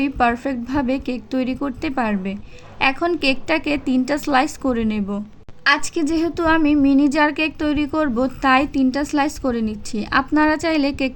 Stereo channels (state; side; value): identical; both; correlation 1.00